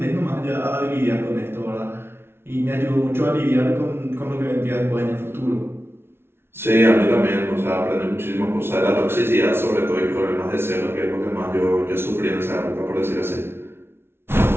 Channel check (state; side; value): late; left; 0.12 ms